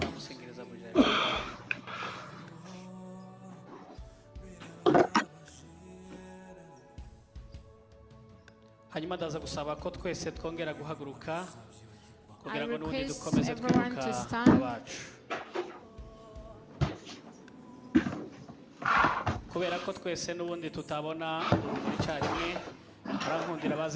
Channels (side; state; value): both; identical; correlation 1.00